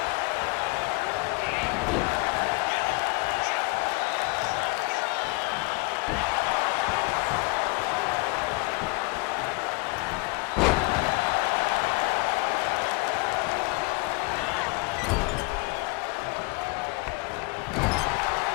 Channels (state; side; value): quieter; right; 26.7 dB